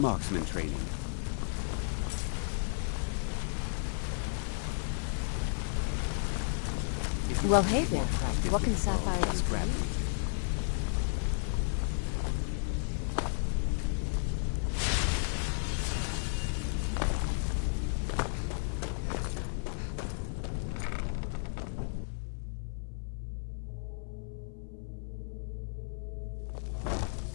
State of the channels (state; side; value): silent; right; 55 dB below the other